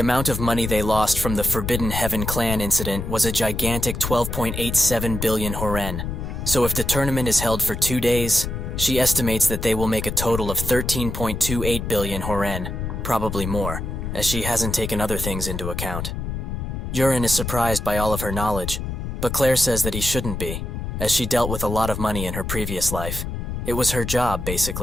of money they lost from the Forbidden Heaven clan incident was a gigantic 12.87 billion horen, so if the tournament is held for 2 days, she estimates that they will make a total of 13.28 billion horen, probably more, as she hasn't taken other things into account. Yurin is surprised by all of her knowledge, but Claire says that he shouldn't be, as she dealt with a lot of money in her previous life. It was her job,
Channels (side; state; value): left; noise; rumble, 5 dB below the sound